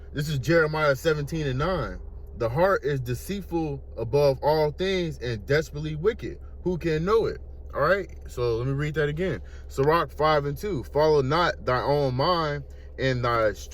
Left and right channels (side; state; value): both; identical; correlation 1.00